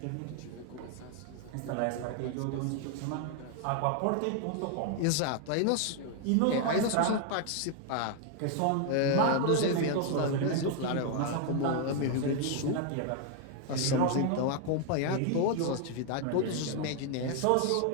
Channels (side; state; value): both; different; correlation 0.00